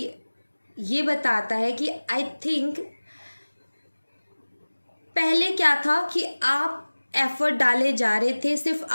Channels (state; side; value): inverted; both; correlation -1.00